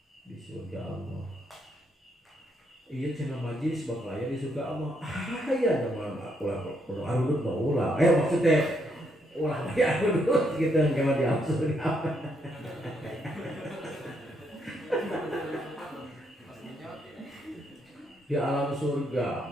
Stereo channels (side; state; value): both; normal; correlation 0.75